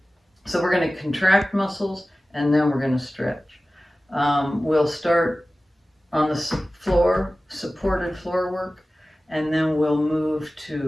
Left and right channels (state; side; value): normal; both; correlation 0.96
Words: So we're going to contract muscles and then we're going to stretch. We'll start on the floor, supported floor work, and then we'll move